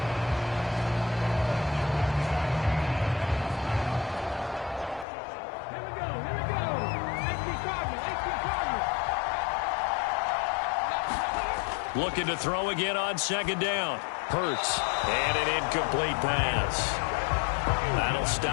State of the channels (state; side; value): drops out; right; at 5.1 s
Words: Looking to throw again on 2nd down. Hurts. And an incomplete pass. That'll